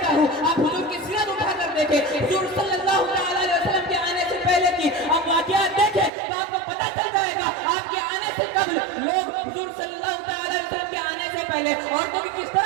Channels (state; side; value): drops out; left; at 6.1 s